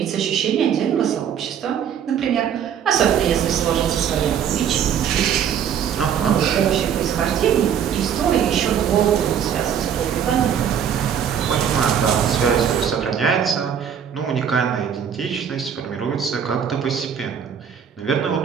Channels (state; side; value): quieter; left; 8.4 dB